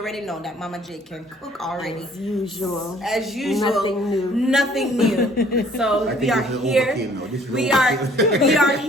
know that Mama J can cook already. As usual. As usual. Nothing new. Nothing new. So we are here. We are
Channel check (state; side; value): normal; both; correlation 0.57